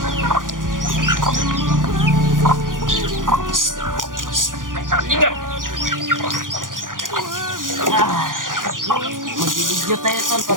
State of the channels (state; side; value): late; left; 0.89 ms